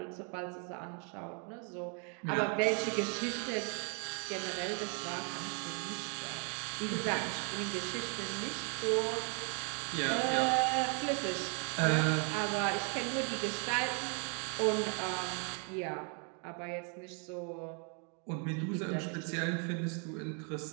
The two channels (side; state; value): left; quieter; 39.0 dB